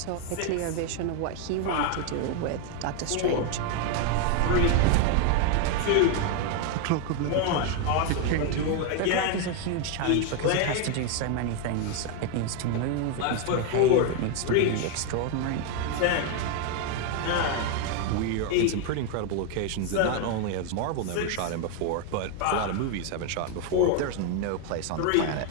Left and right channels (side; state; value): both; different; correlation 0.01